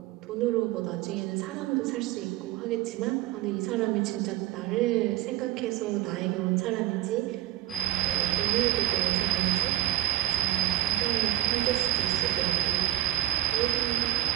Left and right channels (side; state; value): left; quieter; 14.3 dB